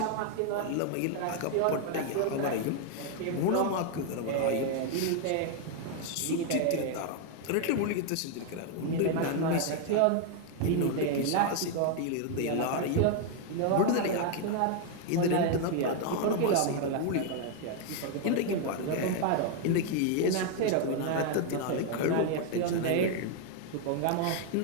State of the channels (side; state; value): both; different; correlation 0.01